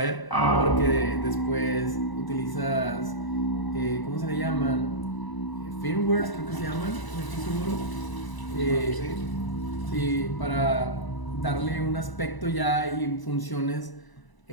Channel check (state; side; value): late; right; 1.0 ms